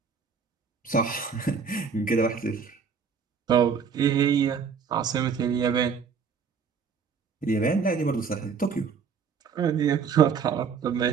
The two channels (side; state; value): left; quieter; 6.2 dB